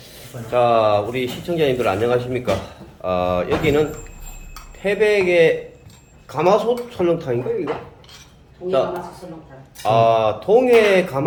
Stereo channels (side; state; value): both; identical; correlation 1.00